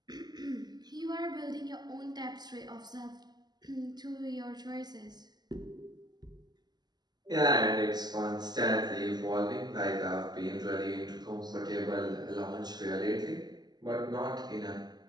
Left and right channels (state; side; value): late; left; 0.20 ms